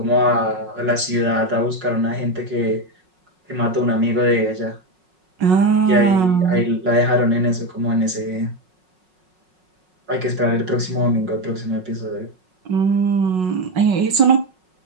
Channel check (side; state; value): left; late; 5.4 ms